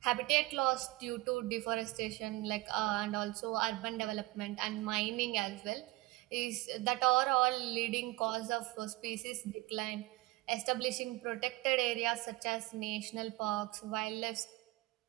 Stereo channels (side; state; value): left; quieter; 20.8 dB